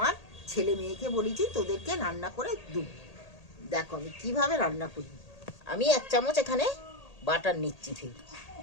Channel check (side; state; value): right; late; 1.8 ms